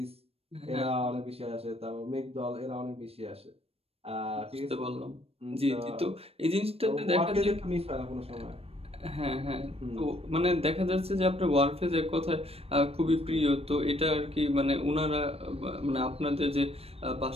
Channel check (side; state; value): left; late; 0.28 ms